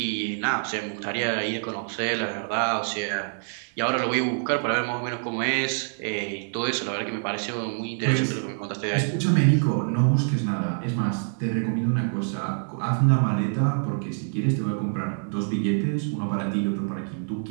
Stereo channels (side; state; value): left; silent; digital silence